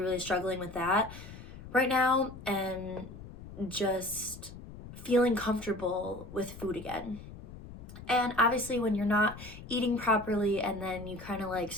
struggling with that right now, and just feeling comfortable with food again. And obviously when you're not eating properly and then you kind of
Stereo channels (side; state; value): left; noise; rumble, 14 dB below the sound